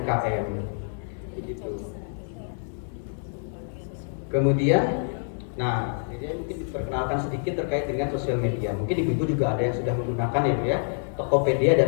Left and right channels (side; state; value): right; silent; digital silence